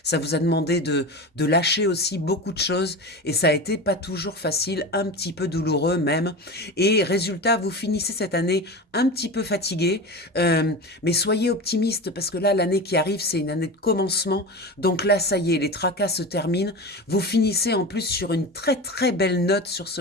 Ça vous a demandé de lâcher aussi beaucoup de choses. Et ça a été pas toujours facile, un petit peu douloureux même. Et résultat, vous finissez cette année un petit peu fatigué. Mais soyez optimiste parce que là, l'année qui arrive, c'est une année de commencement. Donc là, ça y est, les tracas se terminent. Vous finissez en plus sur une très très belle note sur ce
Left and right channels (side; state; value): both; normal; correlation 0.27